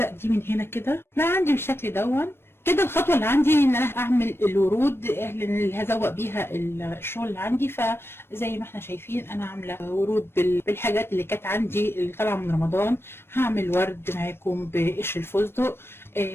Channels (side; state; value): right; late; 0.12 ms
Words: دي من هنا كده. لا عندي بالشكل دون كده. الخطوه اللي عندي ان انا اعمل الورود اللي هزوق بيها الشغل اللي عندي. فزي ما احنا شايفين انا عامله ورود بالحاجات اللي كانت عندي اللي طالعه من رمضان. هعمل ورد معاكم بقشر الفستق،